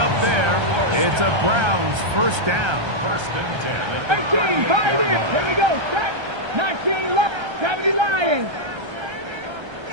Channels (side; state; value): left; late; 1.3 ms